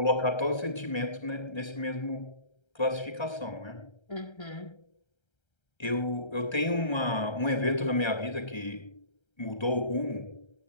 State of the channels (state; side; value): late; right; 1.3 ms